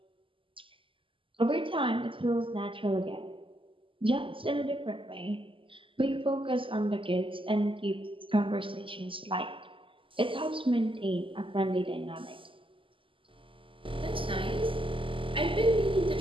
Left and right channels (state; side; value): late; left; 0.25 ms